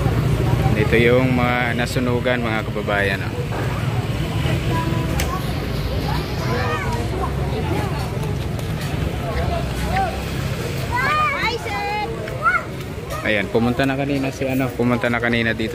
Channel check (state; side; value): identical; both; correlation 1.00